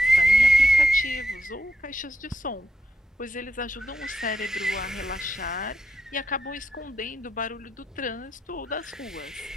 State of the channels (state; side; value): normal; both; correlation 0.81